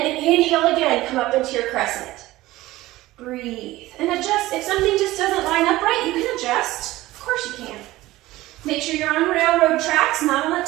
inhale again, come up into your crescent. Breathe, and adjust. If something just doesn't line up right, you can adjust. Of course you can. Make sure you're on railroad tracks, not on a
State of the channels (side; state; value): left; quieter; 17.5 dB